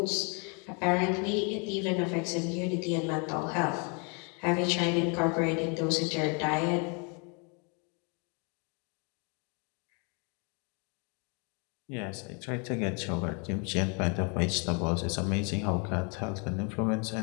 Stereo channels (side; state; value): right; quieter; 35.0 dB